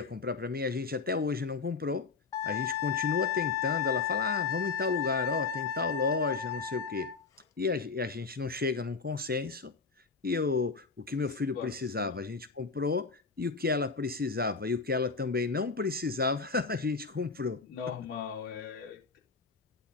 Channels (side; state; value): right; quieter; 4.6 dB